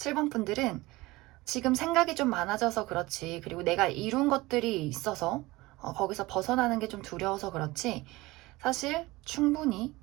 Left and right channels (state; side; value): quieter; left; 20.5 dB